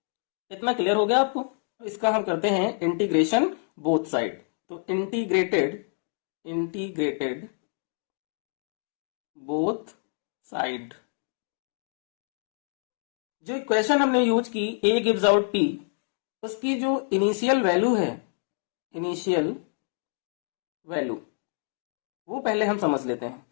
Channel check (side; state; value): right; silent; 60 dB below the other